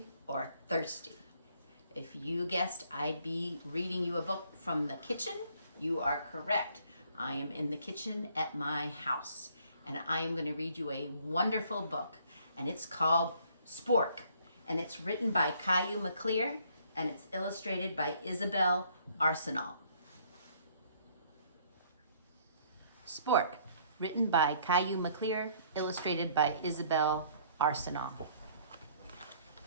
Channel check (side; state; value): both; inverted; correlation -0.62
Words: or thirsty. If you guessed I'd be reading you a book from the kitchen, you are correct. I am in the kitchen at my house, and I am going to read you a wonderful book, and it's called Spork, and it's written by Caillou McClear, and it's illustrated by Isabel Arsenal. Spork, written by Caillou McClear, illustrated by Isabel Arsenal.